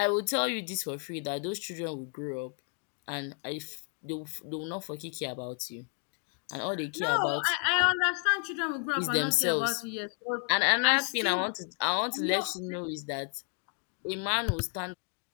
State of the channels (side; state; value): right; quieter; 38.1 dB